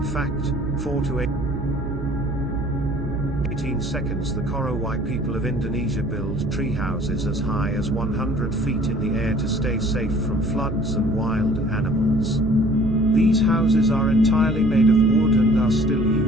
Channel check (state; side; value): noise; right; hum, 7 dB below the sound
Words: fact, 4 to 18 seconds. The Korowai people of Indonesia build tree houses as high as 100 feet in the air to stay safe from floods and wild animals. These houses are entirely made of wood and are still